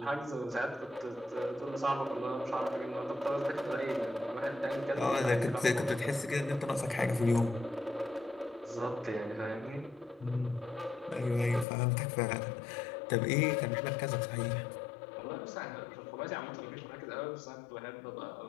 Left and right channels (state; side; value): drops out; right; at 11.7 s